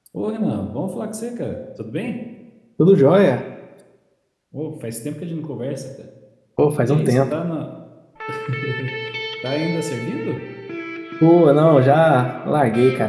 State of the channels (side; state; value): both; identical; correlation 1.00